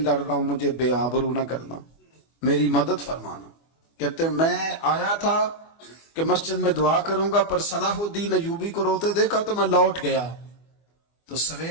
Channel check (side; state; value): right; late; 24 ms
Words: رہا ہوں، مجھے بے آبرو نہ کرنا، میری مدد فرمانا۔ کہتے ہیں میں آیا تھا کہ مسجد میں دعا کروں گا، پر صلاح الدین ایوبی کو روتے دیکھا تو میں لوٹ گیا۔ تو